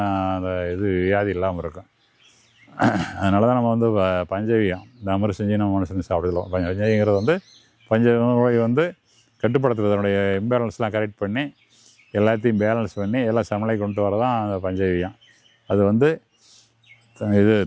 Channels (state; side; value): identical; both; correlation 1.00